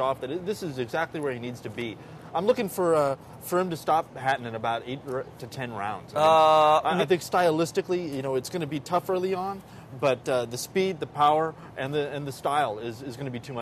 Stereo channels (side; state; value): both; identical; correlation 1.00